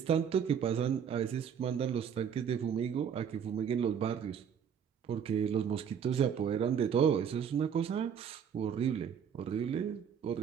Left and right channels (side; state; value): left; quieter; 7.8 dB